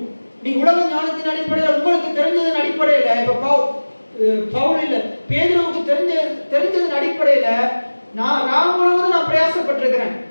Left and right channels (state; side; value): inverted; both; correlation -1.00